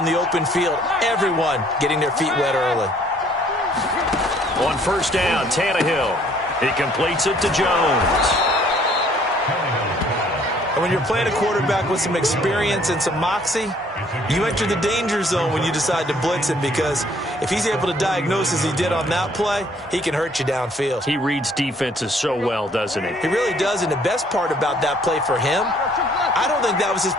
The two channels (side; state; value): both; normal; correlation 0.61